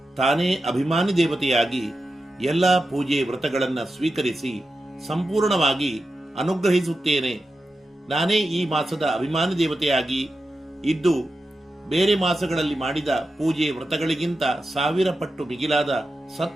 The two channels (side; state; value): both; normal; correlation 0.90